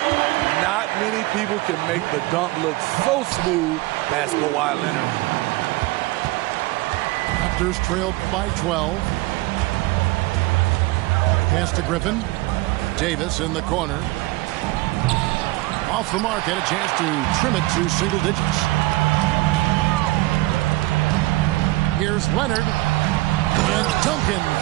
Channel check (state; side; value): quieter; left; 19.9 dB